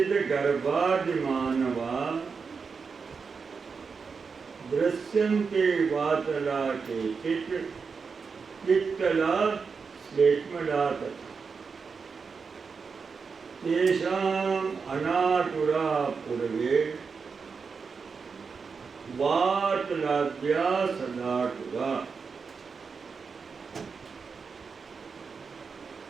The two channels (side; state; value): left; quieter; 5.3 dB